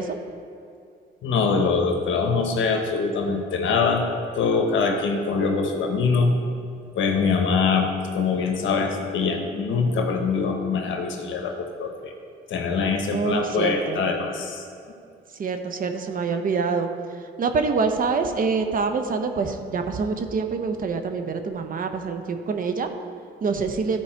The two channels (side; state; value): both; normal; correlation 0.35